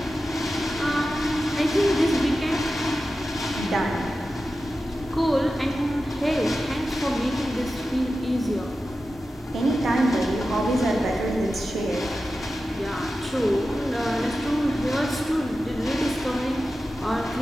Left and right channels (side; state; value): both; normal; correlation 0.93